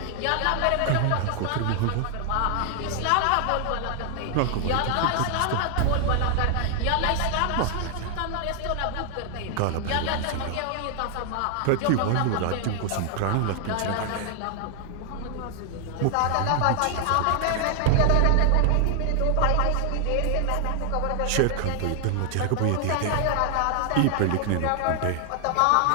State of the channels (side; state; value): both; different; correlation 0.00